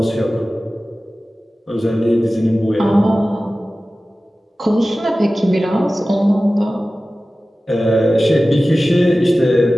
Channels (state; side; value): normal; both; correlation 0.96